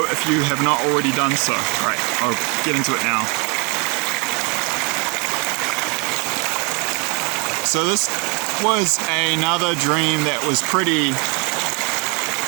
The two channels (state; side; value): quieter; left; 30.3 dB